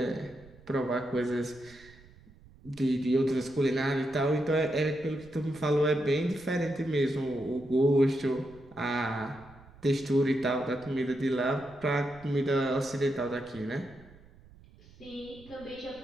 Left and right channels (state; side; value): noise; right; rumble, 23 dB below the sound